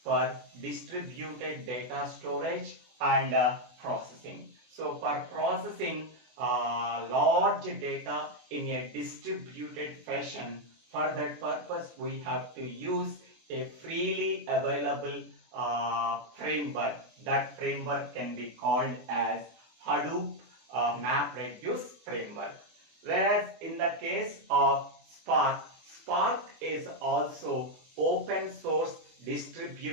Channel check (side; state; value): left; late; 24 ms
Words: for distributed data storage and processing. So for processing large data in a distributed fashion. For that purpose, we have to use a freely available framework. That framework can be called as Hadoop MapReduce framework. Whereas in the case of Spark, Spark is also open source